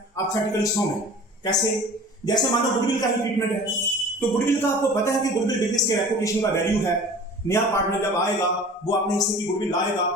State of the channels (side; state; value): both; normal; correlation 0.43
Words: आप थ्योरेटिकली सॉल्व हैं। कैसे? जैसे मानो गुडविल का ही ट्रीटमेंट है, तो गुडविल का आपको पता है कि गुडविल बिजनेस के रेपुटेशन का वैल्यू है। नया पार्टनर जब आएगा वो अपने हिस्से की गुडविल लाएगा,